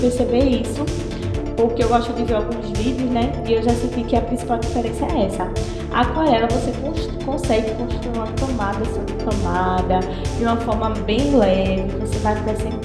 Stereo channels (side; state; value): both; identical; correlation 1.00